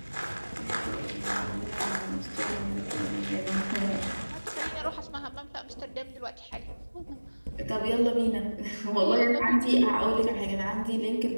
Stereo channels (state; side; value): inverted; both; correlation -1.00